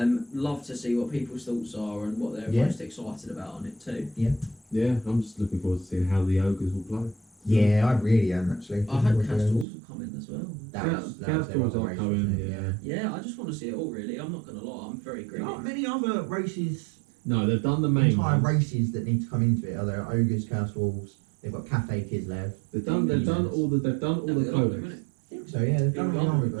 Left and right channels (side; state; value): left; drops out; at 9.7 s